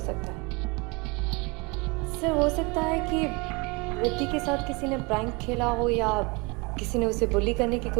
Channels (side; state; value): left; quieter; 27.8 dB